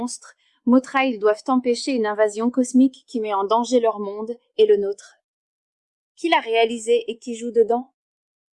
Mothra, ils doivent empêcher une invasion cosmique qui met en danger leur monde et le nôtre. Qui l'a réalisé et qui joue dedans?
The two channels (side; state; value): both; identical; correlation 1.00